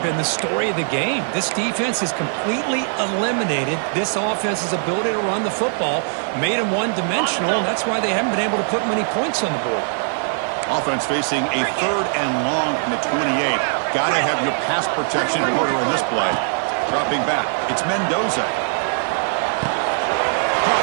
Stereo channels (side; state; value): left; silent; digital silence